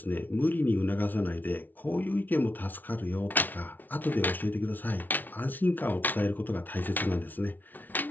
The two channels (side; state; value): right; late; 0.084 ms